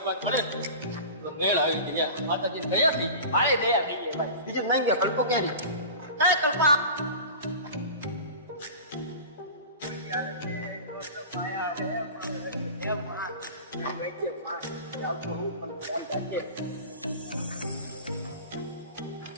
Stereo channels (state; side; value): inverted; both; correlation -0.35